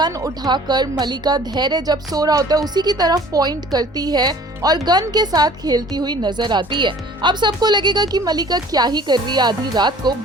उठाकर मलिका धैर्य जब सो रहा होता है उसी की तरफ पॉइंट करती है और गन के साथ खेलती हुई नजर आती है। अब सबको लगेगा कि मलिका क्या ही कर रही है आधी रात को,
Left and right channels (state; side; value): normal; both; correlation 0.50